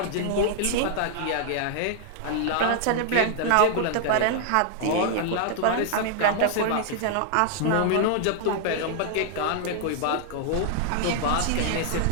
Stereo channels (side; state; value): both; different; correlation 0.00